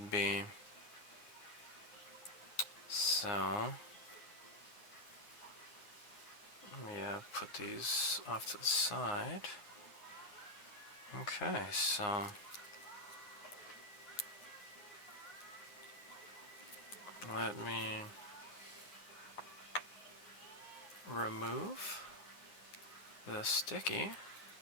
be. So, let me put these off to the side. Okay, so let me remove the sticky.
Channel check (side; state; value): right; late; 9.7 ms